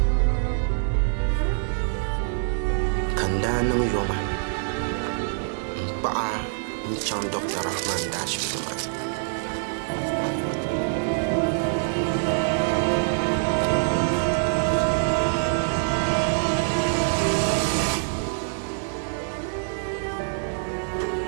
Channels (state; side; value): silent; left; digital silence